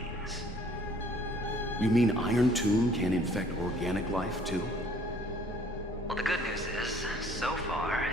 You mean Iron Tomb can infect organic life, too? Well, the good news is, so far,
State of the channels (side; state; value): both; normal; correlation 0.58